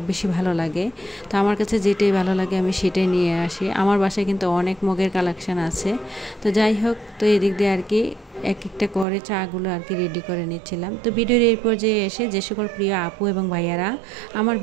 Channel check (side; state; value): left; drops out; at 9.1 s